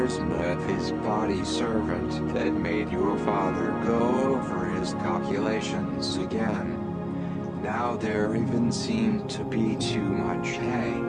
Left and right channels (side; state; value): both; identical; correlation 1.00